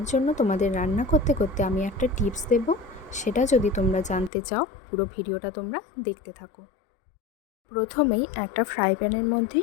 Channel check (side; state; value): right; drops out; at 4.3 s